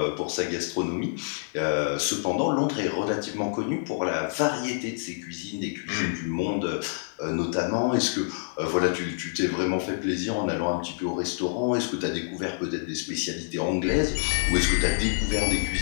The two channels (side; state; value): right; silent; digital silence